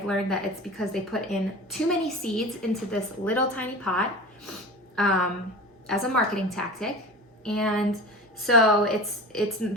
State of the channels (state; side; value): normal; both; correlation 0.34